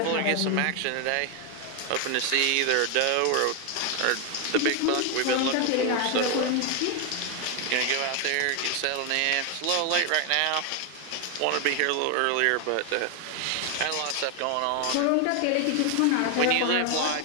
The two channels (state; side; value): different; both; correlation 0.01